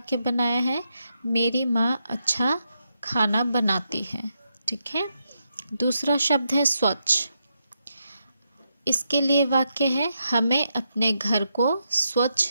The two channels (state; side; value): inverted; both; correlation -0.83